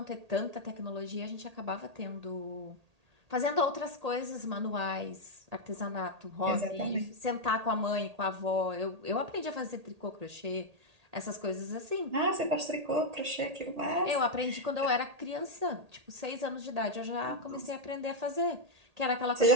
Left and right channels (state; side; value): late; left; 1.8 ms